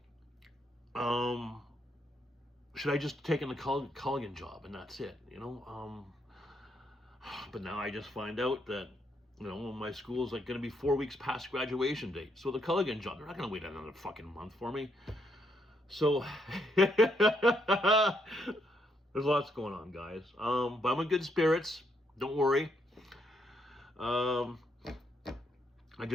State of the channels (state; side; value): normal; both; correlation 0.75